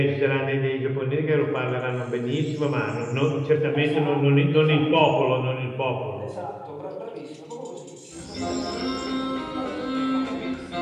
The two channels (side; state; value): both; identical; correlation 1.00